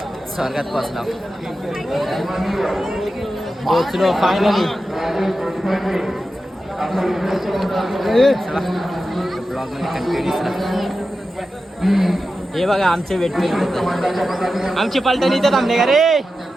स्वर्गात पोचलो फायनली. ब्लॉगमध्ये कंटिन्यू. हे बघा आमचे वेटमेट होते, आमची पलटण इथं थांबले का रे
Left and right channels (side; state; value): both; normal; correlation 0.92